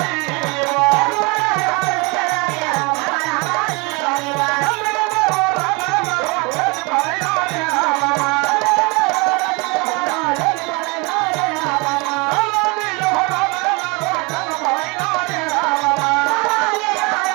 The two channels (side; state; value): left; quieter; 28.7 dB